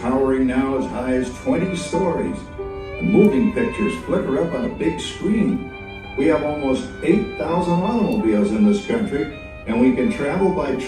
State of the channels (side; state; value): both; identical; correlation 1.00